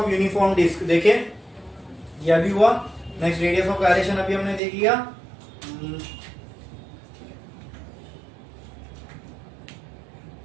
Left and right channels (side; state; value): left; drops out; at 4.6 s